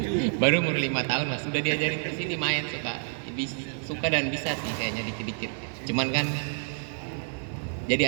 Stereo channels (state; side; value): silent; left; 57 dB below the other